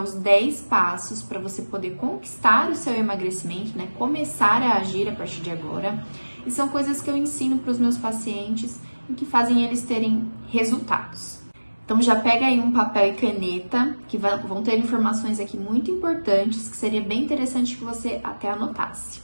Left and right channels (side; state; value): both; inverted; correlation -1.00